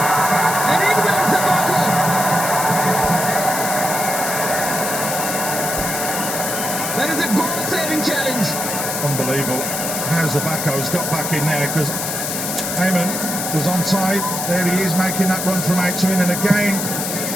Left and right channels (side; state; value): left; noise; hiss, 3 dB below the sound